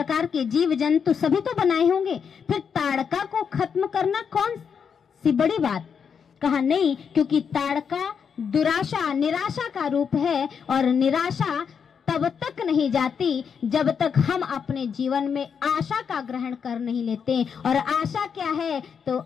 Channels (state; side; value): quieter; right; 6.8 dB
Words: के जीव जंतु सभी तो बनाए होंगे, फिर ताड़का को खत्म करना कौन सी बड़ी बात? कहा नहीं, क्योंकि ताड़का दुराशा निराशा का रूप है, और निराशा तब तक नहीं जाती जब तक हम अपने जीवन में आशा का ग्रहण कर नहीं लेते। और आशा क्या है? तो